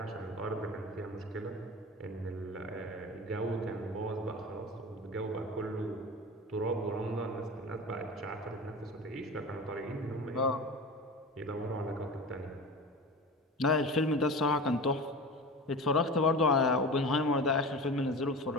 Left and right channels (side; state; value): both; normal; correlation 0.31